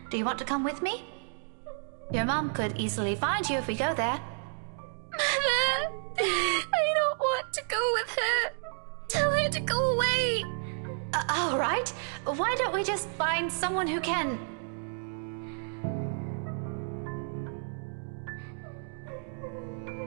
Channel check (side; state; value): left; silent; 57 dB below the other